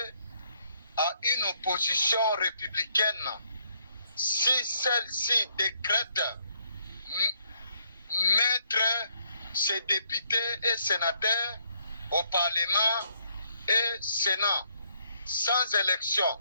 à une opposition républicaine si celle-ci décrète mettre ses députés et sénateurs au Parlement et Sénat sans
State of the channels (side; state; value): both; inverted; correlation -0.70